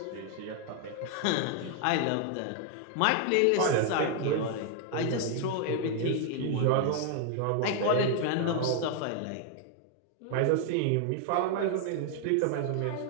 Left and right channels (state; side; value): different; both; correlation 0.00